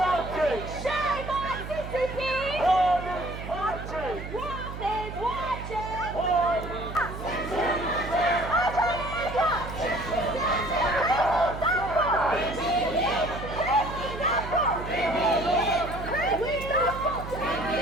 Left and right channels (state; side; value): noise; right; hum, 9 dB below the sound